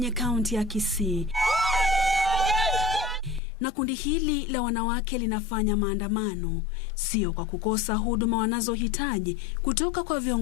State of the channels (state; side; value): drops out; right; at 3.4 s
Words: kaunti ya Kisii. Na kundi hili la wanawake linafanya maandamano, sio kwa kukosa huduma wanazohitaji kutoka kwa